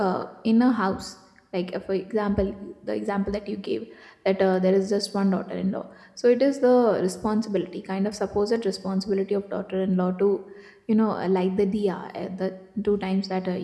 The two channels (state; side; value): identical; both; correlation 1.00